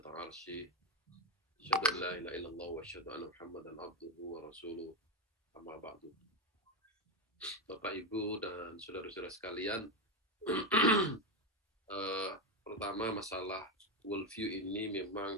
arsy. Asyhadu an la ilaha illallah wa asyhadu anna Muhammadan abduhu wa rasuluh. Amma ba'du. Bapak, Ibu, dan saudara-saudara sekalian, pertama masalah worldview ini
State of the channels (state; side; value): normal; both; correlation 0.10